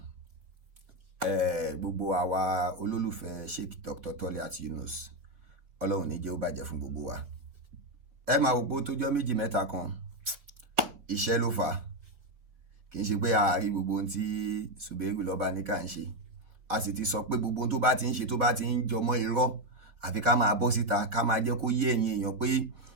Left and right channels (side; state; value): left; late; 4.3 ms